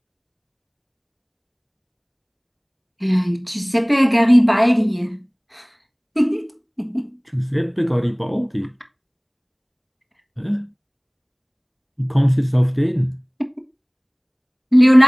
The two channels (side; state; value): both; identical; correlation 1.00